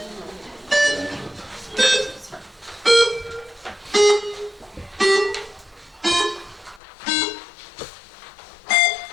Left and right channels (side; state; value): right; drops out; at 6.8 s